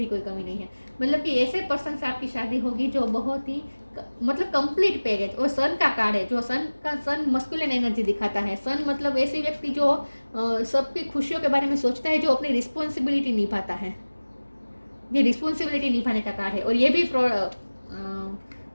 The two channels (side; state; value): both; inverted; correlation -1.00